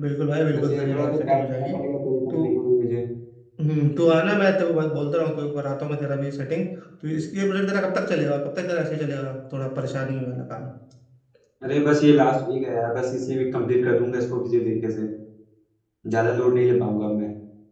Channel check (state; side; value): identical; both; correlation 1.00